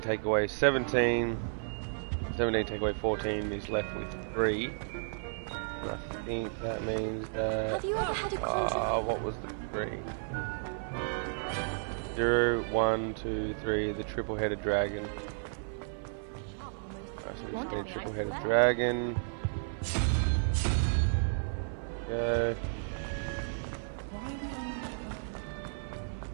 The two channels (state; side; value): silent; left; 56 dB below the other